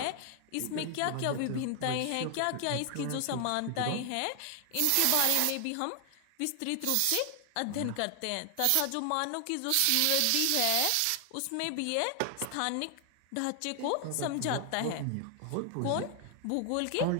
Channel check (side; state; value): both; different; correlation 0.00